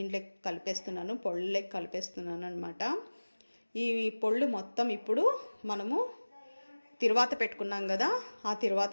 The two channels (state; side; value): inverted; both; correlation -1.00